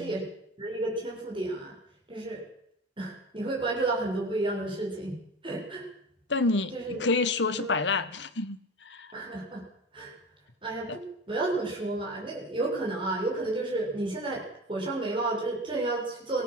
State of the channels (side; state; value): both; normal; correlation 0.30